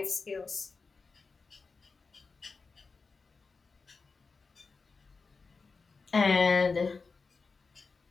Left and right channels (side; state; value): right; quieter; 4.4 dB